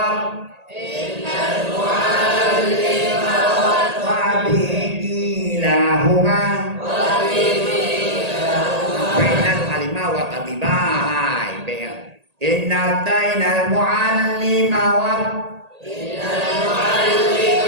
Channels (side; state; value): left; late; 1.8 ms